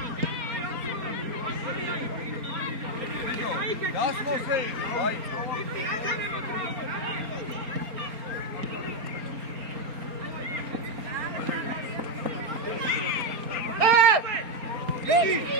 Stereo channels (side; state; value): left; late; 4.3 ms